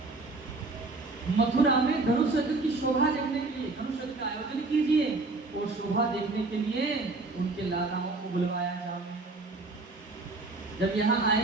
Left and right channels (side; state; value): left; quieter; 3.4 dB